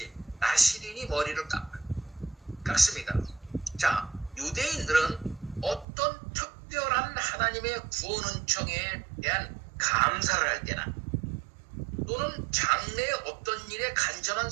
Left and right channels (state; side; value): drops out; left; at 5.9 s